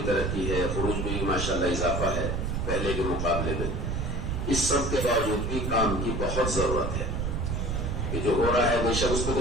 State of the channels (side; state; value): right; noise; rumble, 1 dB below the sound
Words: ترقی ہے، خروج میں بھی ماشاءاللہ اضافہ ہے پہلے کے مقابلے میں. اس سب کے باوجود بھی کام کی بہت ضرورت ہے کہ جو ہو رہا ہے بے شک اس پہ تو